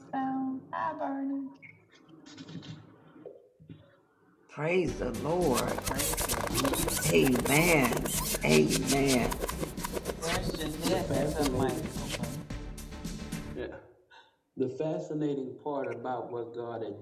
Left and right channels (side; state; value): both; identical; correlation 1.00